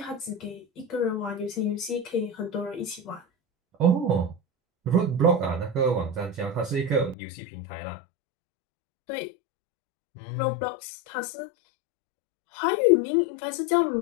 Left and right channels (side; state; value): right; drops out; at 7.2 s